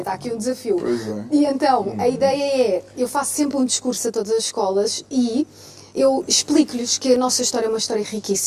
aqui um desafio. Pois é. E então, a ideia é, eu faço sempre um discurso a todas as escolas e eu explico-lhes que a nossa história é uma história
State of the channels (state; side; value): identical; both; correlation 1.00